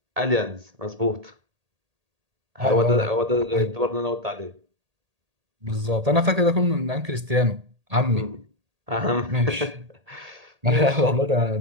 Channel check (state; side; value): late; left; 1.8 ms